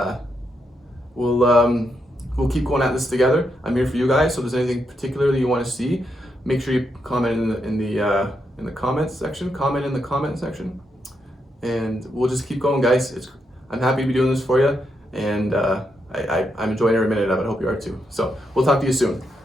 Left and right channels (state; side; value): normal; both; correlation 0.81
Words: we'll keep going at this together. I'm here for you guys, so if there's anything particular that you want to see, make sure you comment in the comments section. Comment in the comment section, and we'll just keep going, guys. I'm happy to be doing this for you, and I'm enjoying every minute of it. I hope you are too. So we'll talk to you soon.